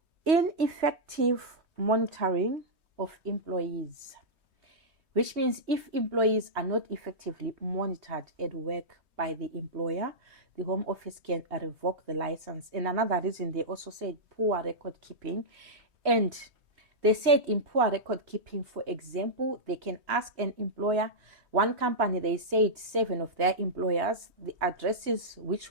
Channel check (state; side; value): late; left; 3.2 ms